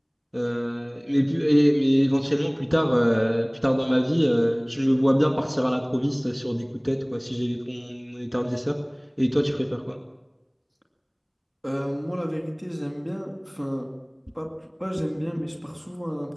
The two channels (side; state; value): both; identical; correlation 1.00